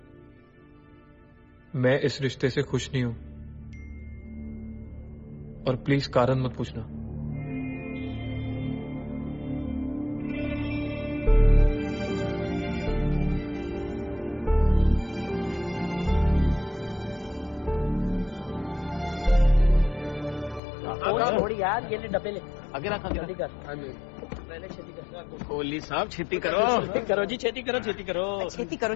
मैं इस रिश्ते से खुश नहीं हूं। और प्लीज कारण मत पूछना। थोड़ी यार, ये ले डब्बे ले, आगे रखा जल्दी कर, पहले छेती कर। कोहली साहब छेती करो। छेती करो जी, छेती करो, छेती करो।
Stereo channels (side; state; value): right; drops out; at 20.6 s